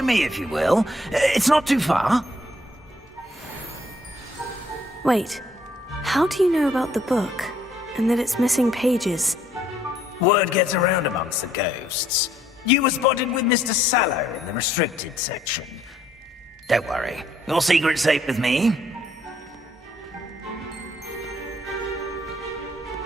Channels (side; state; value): both; normal; correlation 0.66